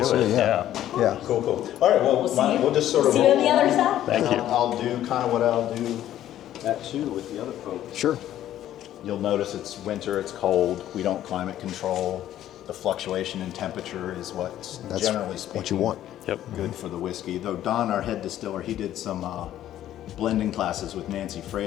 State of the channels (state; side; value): quieter; right; 12.3 dB